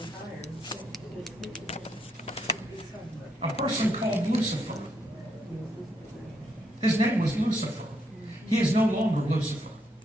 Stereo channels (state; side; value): normal; both; correlation 0.76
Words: A person called Lucifer. His name was Lucifer. He is no longer Lucifer.